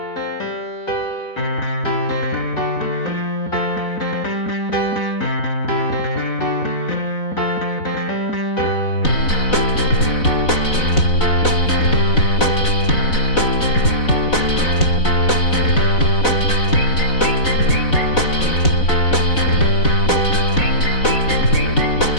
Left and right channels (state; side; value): late; right; 4.0 ms